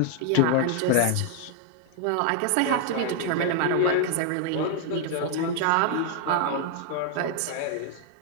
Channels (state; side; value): different; both; correlation 0.00